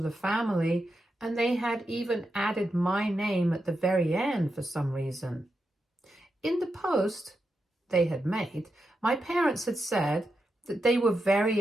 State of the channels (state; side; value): normal; both; correlation 0.87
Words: the family, and they had even added my name at the very end for some reason. In the post they had made, my parents had said that they were